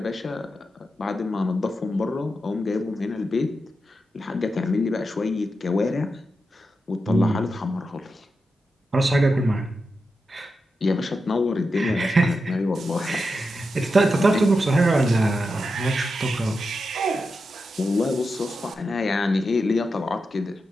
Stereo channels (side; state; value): both; normal; correlation 0.88